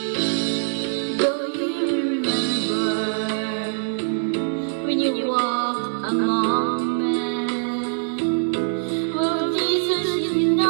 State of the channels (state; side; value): silent; left; digital silence